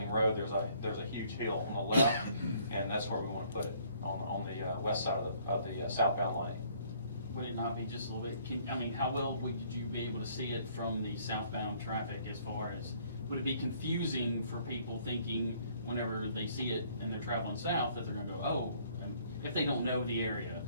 Road, there's a huge hill on the left, and that's where we want to put it, on the west side of the southbound lane. Would it not be just a little bit, how well would you be able to see it from the southbound traffic as far as, would it be confusing for people thinking whenever they see it and they're traveling south that they're gonna go, oh, if they don't know the area?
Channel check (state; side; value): inverted; both; correlation -0.61